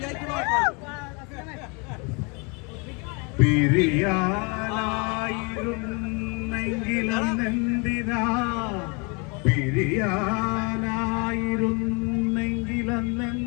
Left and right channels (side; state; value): right; quieter; 32.0 dB